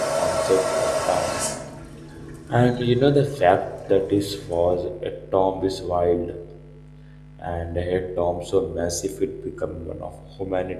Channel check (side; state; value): both; identical; correlation 1.00